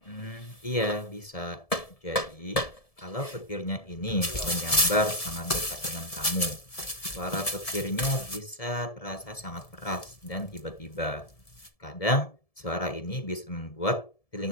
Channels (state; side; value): late; right; 1.7 ms